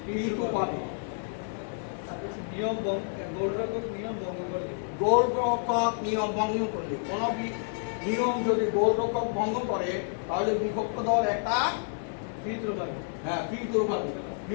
P2 পাবে। গোলরক্ষক নিয়ম ভঙ্গ করলে, গোলরক্ষক নিয়ম ভঙ্গ করলে, কোন নিয়ম যদি গোলরক্ষক ভঙ্গ করে তাহলে বিপক্ষ দল একটা ফ্রি থ্রো পাবে। হ্যাঁ, ফ্রি থ্রো পাবে।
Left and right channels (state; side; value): silent; right; 58 dB below the other